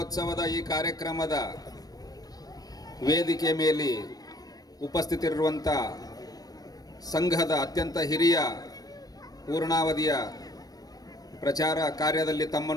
ಈ ಕಾರ್ಯಕ್ರಮದ ವೇದಿಕೆಯ ಮೇಲೆ ಉಪಸ್ಥಿತರಿರುವಂಥ ಸಂಘದ ಅತ್ಯಂತ ಹಿರಿಯ ಪೂರ್ಣಾವಧಿಯ ಪ್ರಚಾರ ಕಾರ್ಯದಲ್ಲಿ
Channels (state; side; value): late; right; 0.18 ms